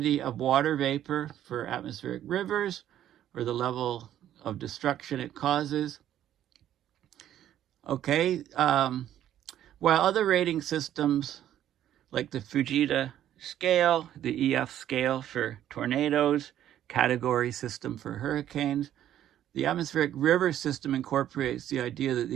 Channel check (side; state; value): left; quieter; 11.5 dB